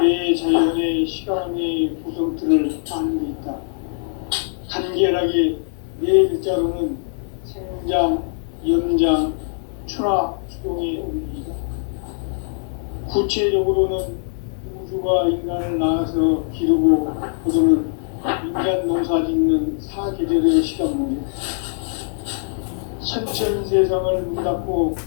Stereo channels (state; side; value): silent; right; 64 dB below the other